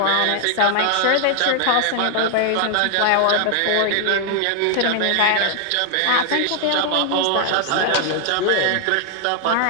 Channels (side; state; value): both; different; correlation 0.00